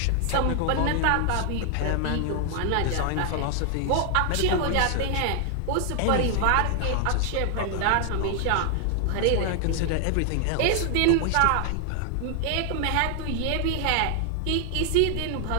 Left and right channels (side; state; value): both; different; correlation 0.00